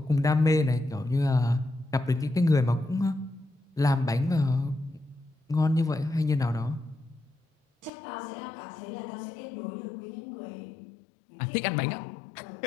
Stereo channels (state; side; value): drops out; right; at 7.9 s